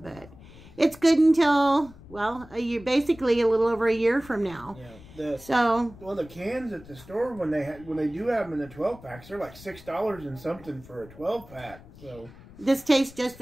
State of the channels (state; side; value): noise; left; rumble, 20 dB below the sound